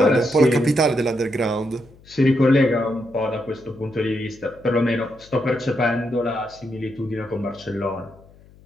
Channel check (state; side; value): noise; left; hum, 25 dB below the sound